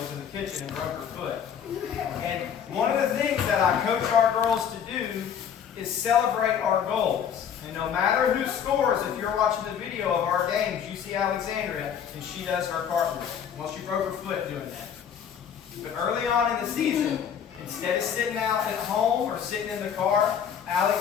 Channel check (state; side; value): quieter; right; 8.1 dB